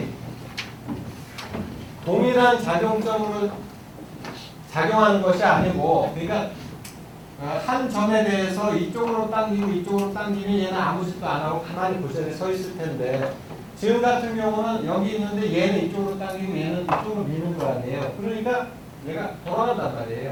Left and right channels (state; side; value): identical; both; correlation 1.00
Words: 동일한 작용점으로 작용하는 것이 아니고 그러니까 한 점에 대해서 이쪽으로 당기고 이쪽으로 당기면 얘는 아무 짓도 안 하고 가만히 그 자리에 서 있을 텐데 지금 같은 경우는 여기 있는데 얘는 이쪽으로 당기고 얘는 이쪽으로 미는 거 아니에요. 그러니까 얘가 돌아간단